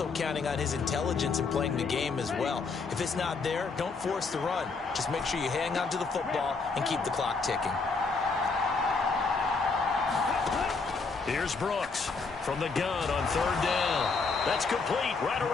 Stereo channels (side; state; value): right; quieter; 4.4 dB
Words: counting on his intelligence in playing the game as well. If it's not there, don't force the run. Just make sure you hang on to the football and keep the clock ticking. Here's Brooks from the gun on 3rd down. That's complete right